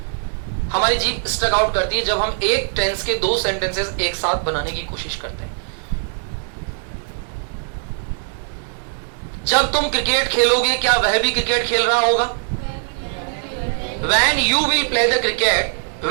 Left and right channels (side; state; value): left; silent; digital silence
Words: हमारी जीभ स्टक आउट करती है जब हम एक टेंस के दो सेंटेंसेस एक साथ बनाने की कोशिश करते हैं। जब तुम क्रिकेट खेलोगे क्या वह भी क्रिकेट खेल रहा होगा? When you will play the cricket,